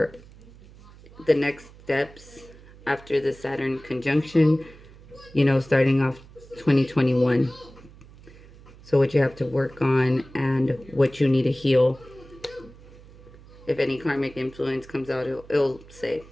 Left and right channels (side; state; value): right; noise; hum, 22 dB below the sound